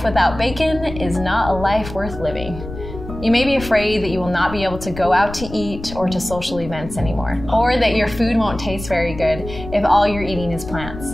without bacon is not a life worth living. You may be afraid that you will not be able to go out to eat or to social events anymore, or that your food won't taste very good if all you're eating is plants.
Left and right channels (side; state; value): left; noise; rumble, 11 dB below the sound